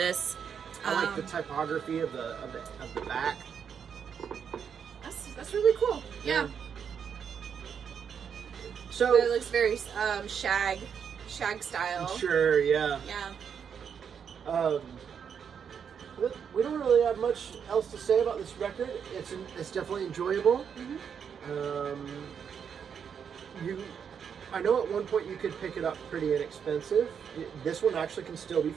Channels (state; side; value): quieter; left; 7.4 dB